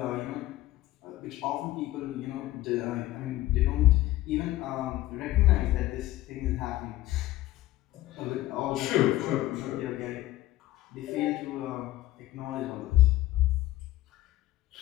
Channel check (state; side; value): quieter; right; 16.0 dB